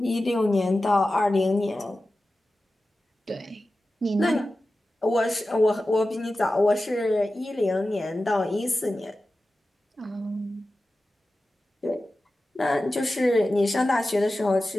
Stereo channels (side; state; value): both; normal; correlation 0.94